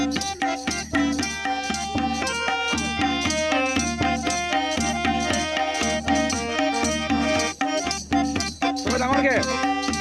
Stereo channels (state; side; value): identical; both; correlation 1.00